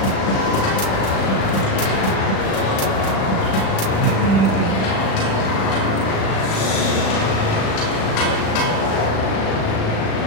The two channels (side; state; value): right; late; 36 ms